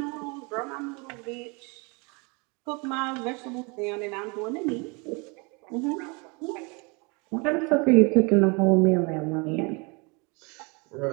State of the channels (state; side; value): quieter; left; 30.2 dB